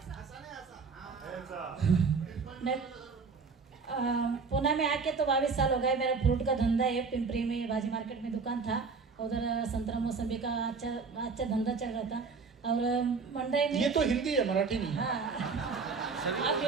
मैं पुणे में आके तो 22 साल हो गए। मेरा फ्रूट का धंधा है, पिंपरी में भाजी मार्केट में दुकान था। उधर संतरा मौसमी का अच्छा धंधा चल रहा था। और मंडई में, ये तो हिंदी है, मराठी नहीं है। हाँ, आप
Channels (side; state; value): left; quieter; 4.9 dB